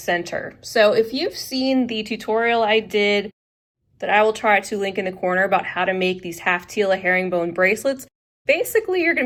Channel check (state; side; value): identical; both; correlation 1.00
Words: So if you've seen the tutorial I did that I will try to link in the corner about how to make these Half Tila herringbone bracelets, basically you're